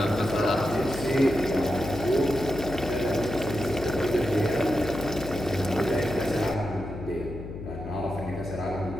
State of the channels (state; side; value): noise; left; hum, 10 dB below the sound